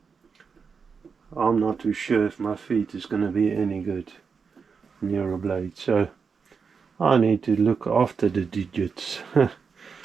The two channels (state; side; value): quieter; left; 5.6 dB